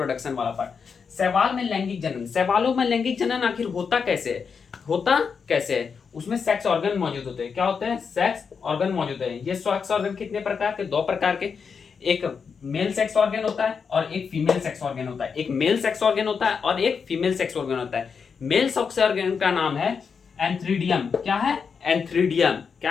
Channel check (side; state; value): right; quieter; 6.0 dB